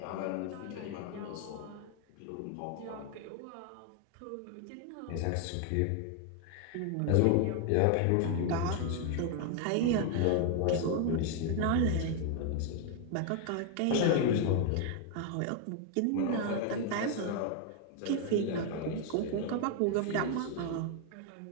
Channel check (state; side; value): different; both; correlation 0.01